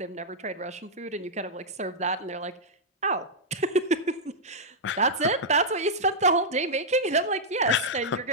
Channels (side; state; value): both; normal; correlation -0.08